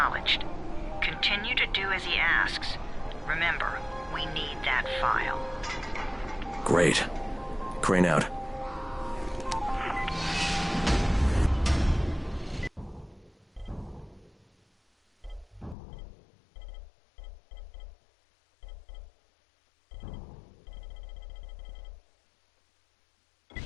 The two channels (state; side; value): drops out; right; at 15.8 s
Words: Continue to do as he asks. Remember, we need that file. Great. Crane out.